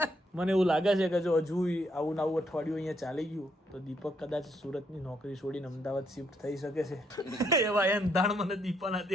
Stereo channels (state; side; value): normal; both; correlation 0.74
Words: મને એવું લાગે છે કે જો હજુ આવું આવું અઠવાડિયું અહીંયા ચાલી ગયું તો દીપક કદાચ સુરતની નોકરી છોડીને અમદાવાદ શિફ્ટ થઈ શકે છે. એવા એંધાણ મને દીપાના